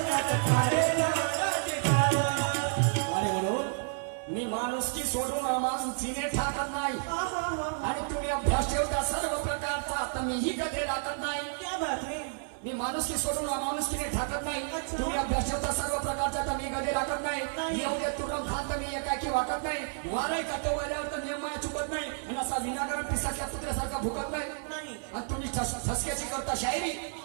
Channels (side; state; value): left; silent; 57 dB below the other